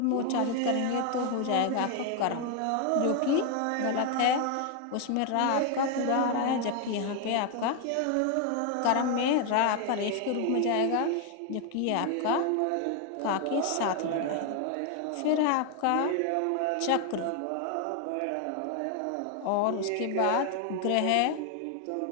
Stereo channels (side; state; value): both; different; correlation 0.01